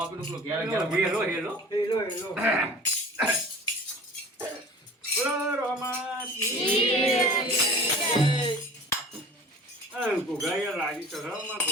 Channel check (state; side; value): normal; both; correlation 0.43